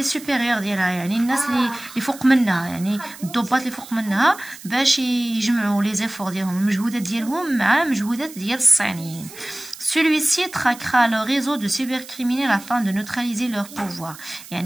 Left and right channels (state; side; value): noise; right; hiss, 17 dB below the sound